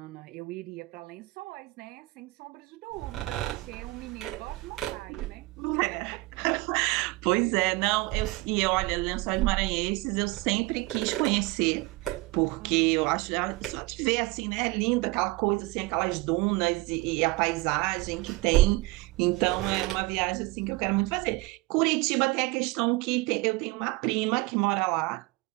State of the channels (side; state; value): left; quieter; 21.9 dB